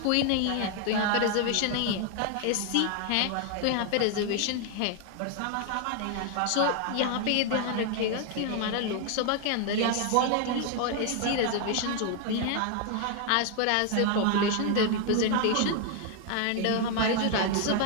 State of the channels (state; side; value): different; both; correlation 0.01